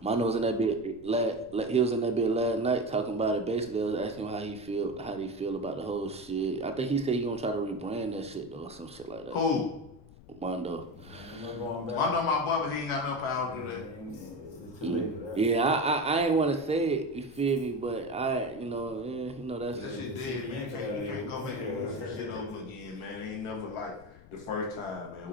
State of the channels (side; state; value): left; noise; rumble, 20 dB below the sound